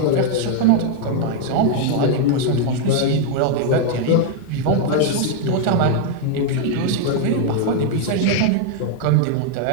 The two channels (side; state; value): both; different; correlation 0.00